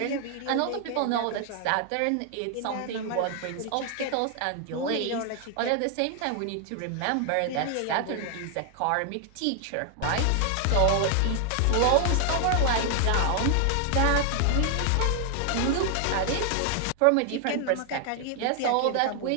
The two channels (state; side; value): different; both; correlation 0.00